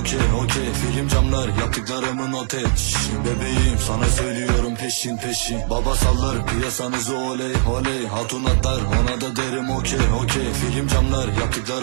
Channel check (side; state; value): left; silent; 65 dB below the other